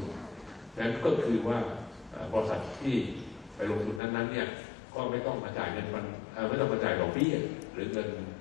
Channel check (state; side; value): drops out; right; at 4.0 s